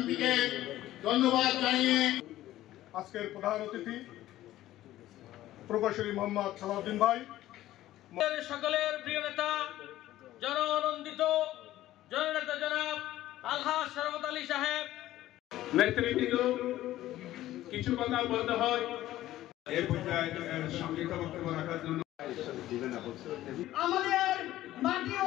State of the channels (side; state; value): right; quieter; 14.6 dB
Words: ধন্যবাদ জানিয়ে আজকের প্রধান অতিথি প্রকৌশলী মোহাম্মদ সালাউদ্দিন ভাই, সকলের প্রিয় নেতা জননন্দিত জননেতা জনাব আলহাজ শরফত আলী সাহেব নেতৃবৃন্দ কিছু কথা বলতে হয় এই পর্যায়ে সংক্ষিপ্ত বক্তব্য রাখার জন্য আমাদের মাটি ও